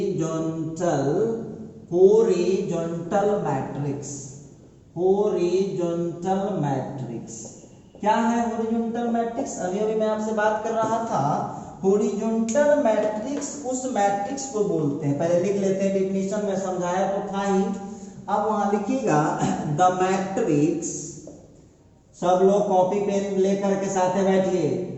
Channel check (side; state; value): both; identical; correlation 1.00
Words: मैट्रिक्स। हॉरिजॉन्टल मैट्रिक्स क्या है? हॉरिजॉन्टल मैट्रिक्स अभी अभी मैं आपसे बात कर रहा था। हॉरिजॉन्टल मैट्रिक्स उस मैट्रिक्स को बोलते हैं, पहले लिख लेते हैं, डेफिनेशन में समझाया तो था ही। अब वहां लिखिएगा द मैट्रिक्स, सब लोग कॉपी पेन लेकर के साथ बैठिए।